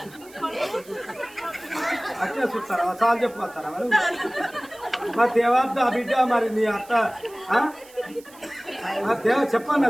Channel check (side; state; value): right; noise; hiss, 23 dB below the sound